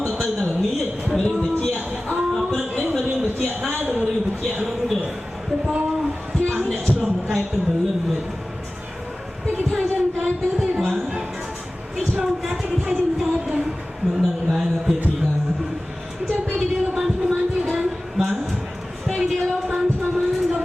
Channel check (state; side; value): normal; both; correlation 0.97